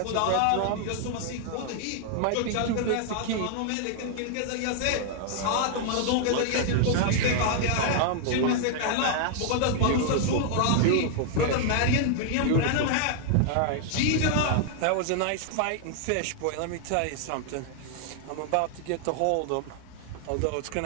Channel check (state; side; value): different; both; correlation 0.00